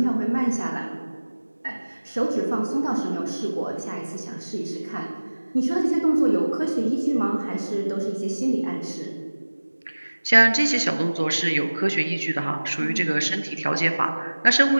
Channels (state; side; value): inverted; both; correlation -1.00